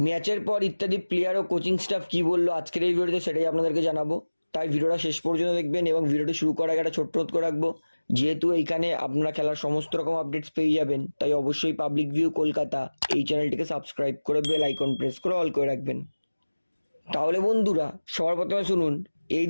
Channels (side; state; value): both; inverted; correlation -1.00